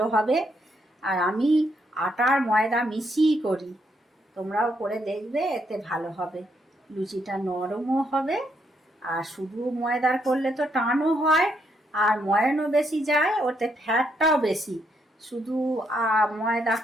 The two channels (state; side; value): normal; both; correlation 0.76